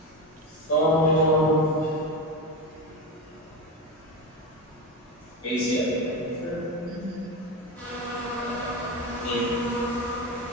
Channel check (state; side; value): normal; both; correlation 0.19